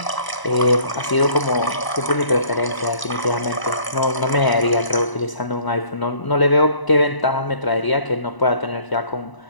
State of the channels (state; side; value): late; right; 1.0 ms